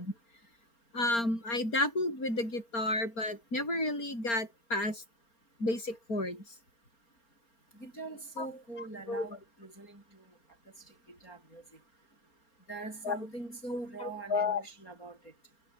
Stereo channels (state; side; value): late; right; 4.3 ms